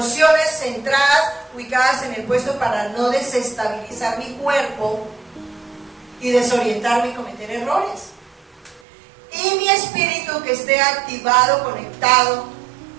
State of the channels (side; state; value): left; drops out; at 8.8 s